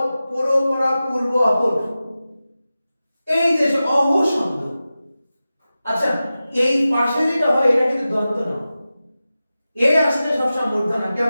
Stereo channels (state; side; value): inverted; both; correlation -0.94